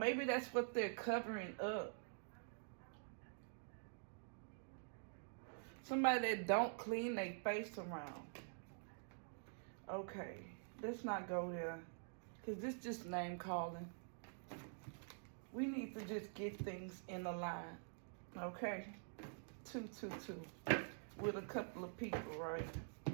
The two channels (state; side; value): silent; left; digital silence